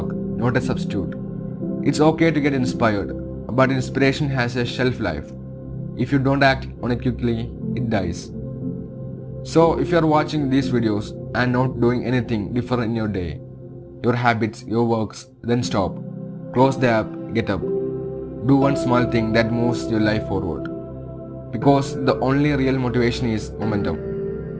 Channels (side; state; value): both; identical; correlation 1.00